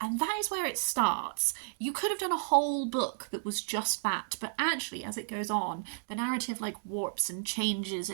and that is where it starts. You could have done a whole book that was just that, but actually as it goes on, the narrative like warps and changes,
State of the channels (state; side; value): silent; left; digital silence